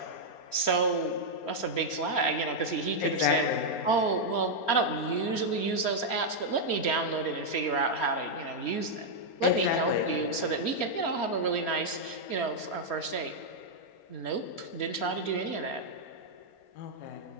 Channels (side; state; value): right; late; 4.3 ms